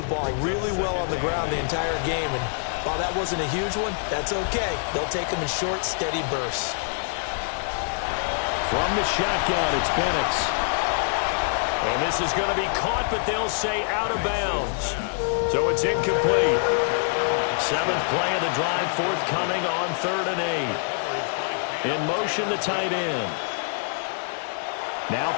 ball really well on the ground the entire game. And while that wasn't a huge one, that's okay. They'll take them in short, steady bursts. From the shotgun, it's Penix. And this is going to be caught, but they'll say out of bounds. So it's incomplete. 7th play of the drive forthcoming on 3rd and 8. In motion, the tight end. Now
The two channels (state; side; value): silent; right; 61 dB below the other